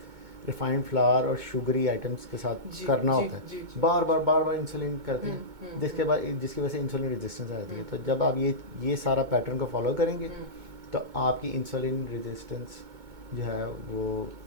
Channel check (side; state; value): left; late; 2.2 ms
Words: रिफाइंड फ्लावर और शुगरी आइटम्स के साथ करना होता है। बार बार इंसुलिन करते हैं जिसकी वजह से इंसुलिन रेजिस्टेंस आ जाती है। तो जब आप ये सारा पैटर्न को फॉलो करेंगे तो आपकी इंसुलिन रेजिस्टेंस जो है वो